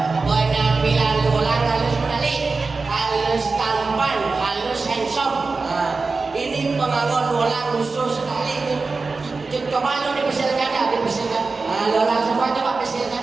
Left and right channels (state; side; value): quieter; left; 4.0 dB